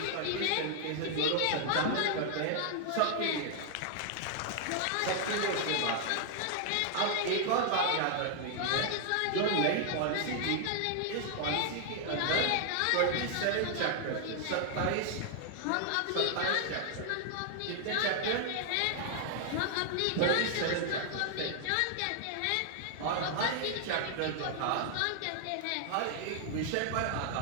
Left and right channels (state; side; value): different; both; correlation 0.00